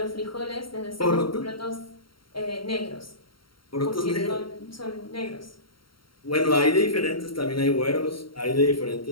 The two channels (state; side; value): late; right; 0.73 ms